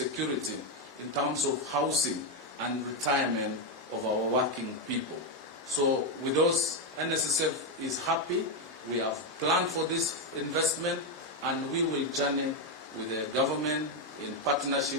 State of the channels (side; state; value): both; normal; correlation 0.05